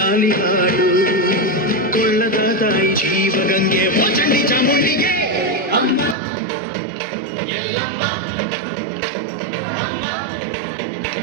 ಲಾಲಿ ಹಾಡು ಕೊಳ್ಳದ ತಾಯಿ ಜೀವಗಂಗೆ ಓ ಚಂಡಿ ಚಾಮುಂಡಿಗೆ ಅಮ್ಮ ಎಲ್ಲಮ್ಮ ಅಮ್ಮ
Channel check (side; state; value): left; drops out; at 6.2 s